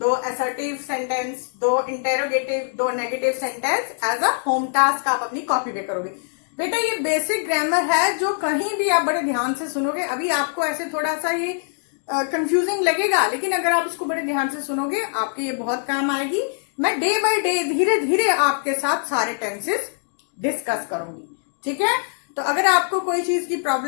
assertive sentence, 2 interrogative, 2 negative sentence as a home task आप अपनी कॉपी पे करोगे। बेटा ये बेसिक ग्रामर है जो कहीं भी आप बड़े ध्यान से सुनोगे। अभी आपको ऐसे थोड़ा सा ये कंफ्यूजिंग लगेगा, लेकिन अगर आप इसको बड़े ध्यान से सुनोगे आपके ये बहुत काम आएगी। मैं डे बाय डे धीरे धीरे आपके साथ सारे टेंसेस डिस्कस करूंगी, ठीक है। तो अगर आपको कोई चीज की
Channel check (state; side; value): silent; right; digital silence